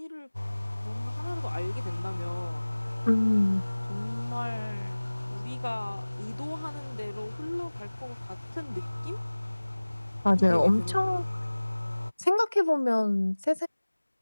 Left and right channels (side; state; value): both; inverted; correlation -1.00